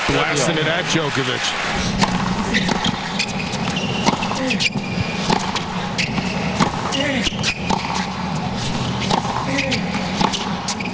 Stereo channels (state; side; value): identical; both; correlation 1.00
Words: blasting it at Djokovic.